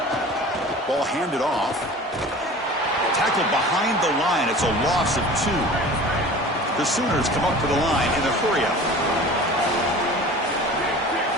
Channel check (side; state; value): both; normal; correlation 0.40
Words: Ball handed off. Tackled behind the line. It's a loss of 2. The Sooners come up to the line in a hurry-up.